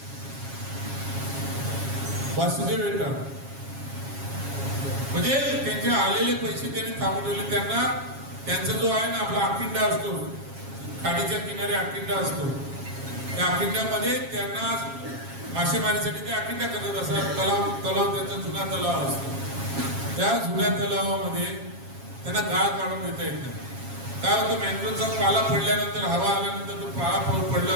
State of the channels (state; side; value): late; left; 7.3 ms